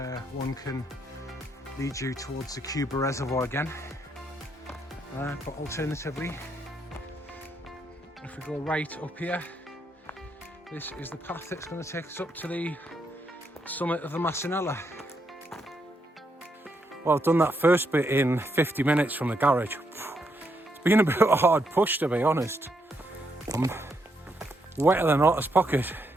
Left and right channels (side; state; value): both; normal; correlation 0.77